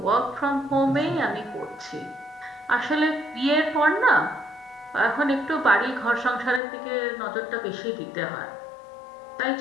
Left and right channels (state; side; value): drops out; right; at 6.6 s